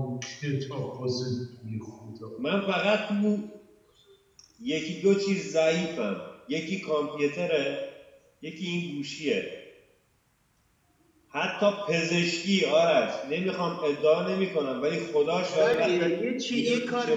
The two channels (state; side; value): identical; both; correlation 1.00